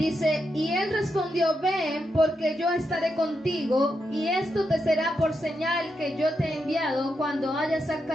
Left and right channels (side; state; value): both; normal; correlation 0.84